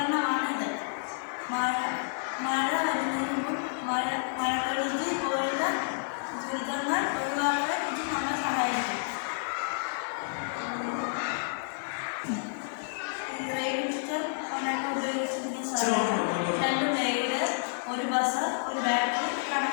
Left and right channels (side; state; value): right; silent; 58 dB below the other